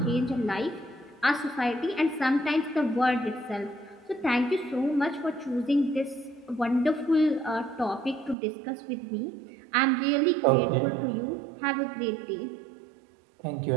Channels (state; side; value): drops out; left; at 8.3 s